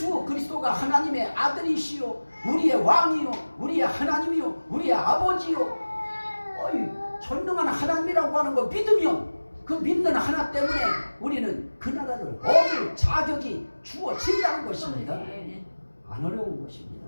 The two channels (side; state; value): both; inverted; correlation -1.00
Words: 그리스도가 하나님의 아들이시요 우리의 왕이요 우리의 하나님이요 우리의 아버지요 전능한 하나님이라고 하는 거 믿으면 그 믿는 하나 때문에 우리는 그 나라를 얻을 자격이 주어진다는 것입니다. 안 어려운 것입니다.